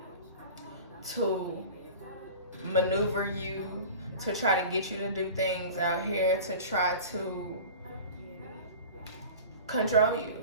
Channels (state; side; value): inverted; both; correlation -0.38